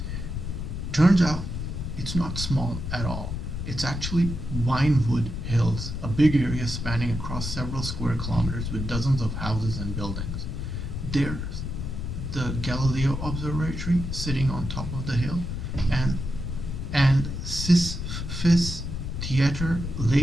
Turns out it's not small at all. It's actually Winewood Hills, a big area spanning across several square kilometers with dozens of houses and buildings. There's the Galileo Observatory sitting on top of the hill, and Sisyphus Theatre,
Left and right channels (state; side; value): noise; left; rumble, 5 dB below the sound